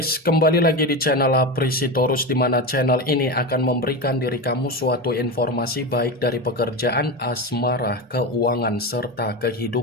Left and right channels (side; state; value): both; normal; correlation 0.20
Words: kembali lagi di channel Aprisitorus, di mana channel ini akan memberikan diri kamu suatu informasi baik dari pekerjaan, asmara, keuangan, serta